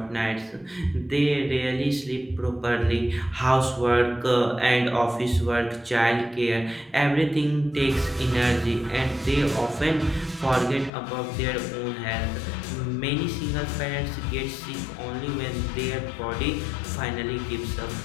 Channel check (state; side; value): drops out; right; at 10.9 s